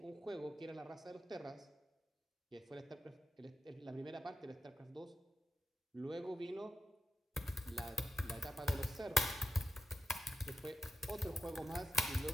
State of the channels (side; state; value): both; normal; correlation 0.86